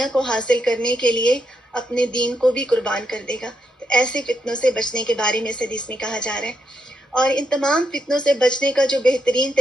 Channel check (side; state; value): both; normal; correlation 0.81